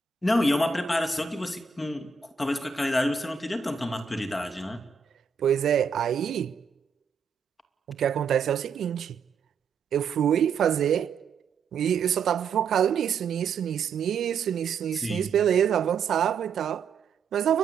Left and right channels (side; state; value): left; quieter; 5.6 dB